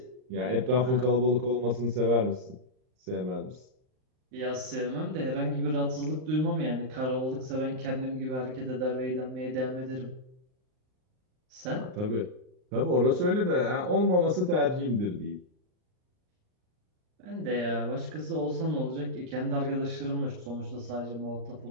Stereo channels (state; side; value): late; left; 39 ms